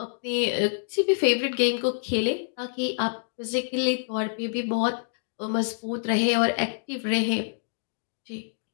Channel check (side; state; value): right; silent; digital silence